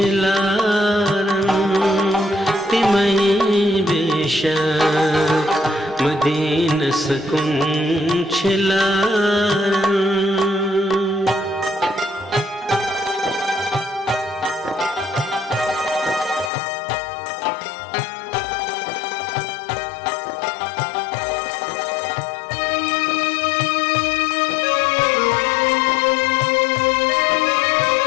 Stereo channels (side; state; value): right; drops out; at 16.5 s